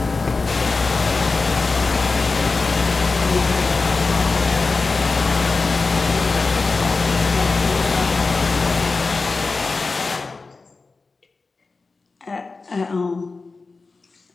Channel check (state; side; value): quieter; right; 4.0 dB